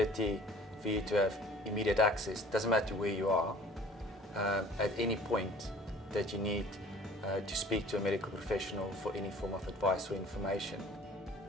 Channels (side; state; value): both; normal; correlation 0.50